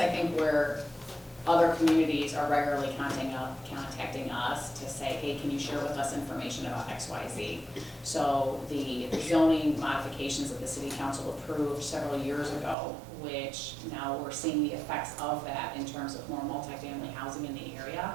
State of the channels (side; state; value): left; drops out; at 12.8 s